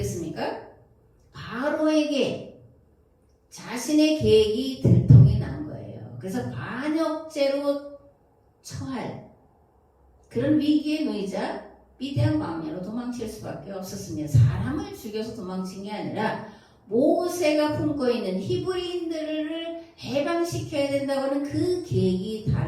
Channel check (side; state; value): both; identical; correlation 1.00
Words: 바로에게 자신의 계획이 들통이 난 거예요. 그래서 반역죄로 처할 그런 위기에 놓이자 미디안 광야로 도망칠 수밖에 없었습니다. 사람을 죽여서 도망친 게 아니라 모세가 품고 있는 히브리인들을 해방시켜야 된다고 하는 그 계획이